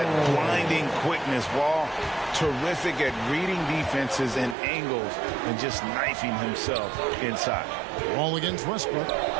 blinding quickness. Wall, terrific at reading defenses and angles and just knifing himself inside. Wall against Westbrook.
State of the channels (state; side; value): drops out; left; at 4.5 s